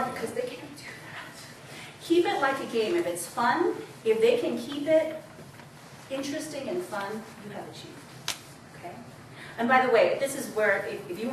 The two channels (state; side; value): identical; both; correlation 1.00